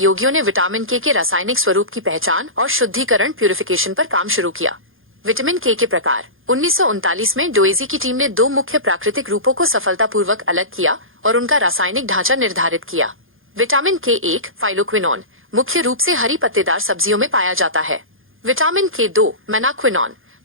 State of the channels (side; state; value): left; late; 0.59 ms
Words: ने विटामिन के रासायनिक स्वरूप की पहचान और शुद्धिकरण प्यूरिफिकेशन पर काम शुरू किया। विटामिन के प्रकार। 1939 में डोइजी की टीम ने दो मुख्य प्राकृतिक रूपों को सफलतापूर्वक अलग किया और उनका रासायनिक ढांचा निर्धारित किया। विटामिन के 1 फाइलोक्विनोन मुख्य रूप से हरी पत्तेदार सब्जियों में पाया जाता है। विटामिन के 2 मेनाक्विनोन